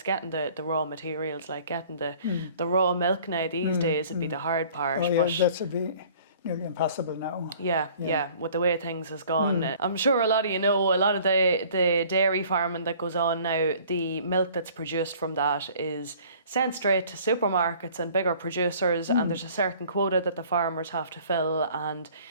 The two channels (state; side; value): inverted; both; correlation -0.52